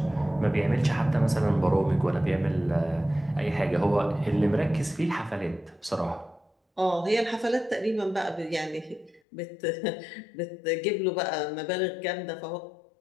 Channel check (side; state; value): right; drops out; at 9.2 s